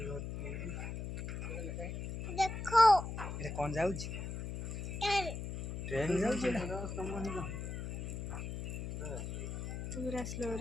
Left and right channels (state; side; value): noise; left; hum, 5 dB below the sound